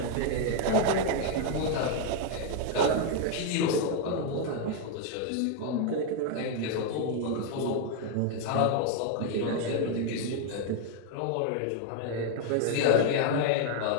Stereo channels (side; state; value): both; different; correlation 0.00